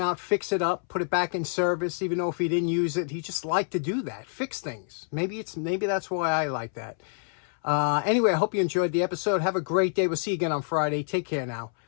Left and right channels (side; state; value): right; silent; 60 dB below the other